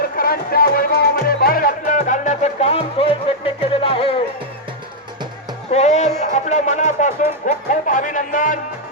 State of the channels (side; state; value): both; normal; correlation -0.04